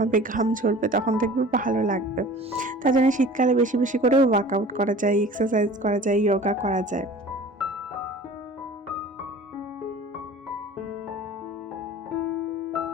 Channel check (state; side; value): normal; both; correlation 0.43